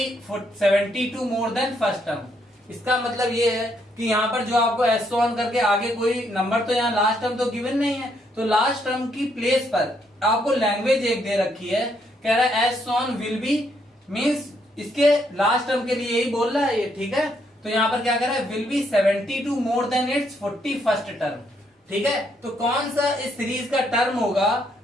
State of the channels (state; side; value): normal; both; correlation 0.73